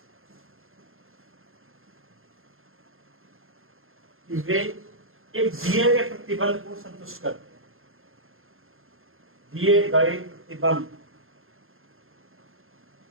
वे एक दिए गए प्रतिबंध को संतुष्ट करते हैं। दिए गए प्रतिबंध,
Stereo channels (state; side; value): late; left; 0.60 ms